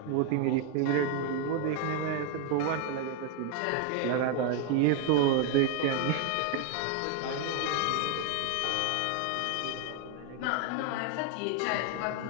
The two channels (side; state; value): both; different; correlation 0.01